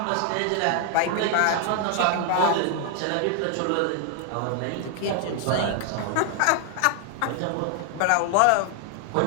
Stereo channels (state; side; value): different; both; correlation 0.00